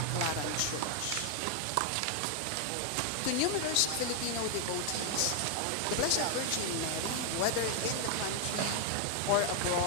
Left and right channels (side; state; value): both; different; correlation 0.00